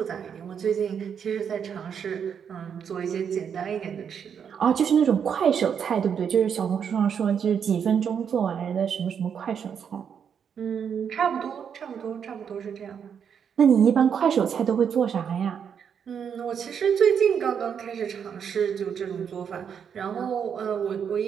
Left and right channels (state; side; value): quieter; left; 7.5 dB